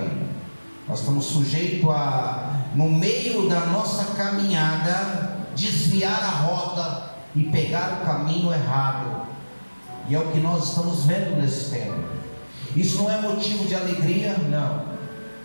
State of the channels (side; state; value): both; inverted; correlation -1.00